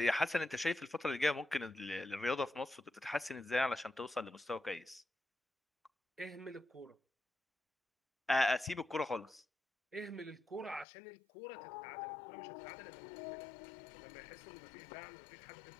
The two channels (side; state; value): right; drops out; at 10.9 s